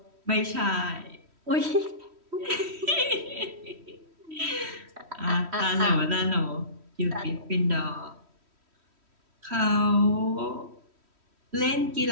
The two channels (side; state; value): left; late; 3.1 ms